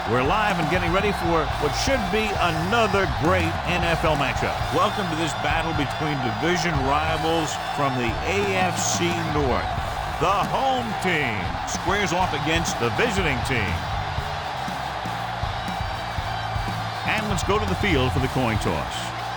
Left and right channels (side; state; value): both; identical; correlation 1.00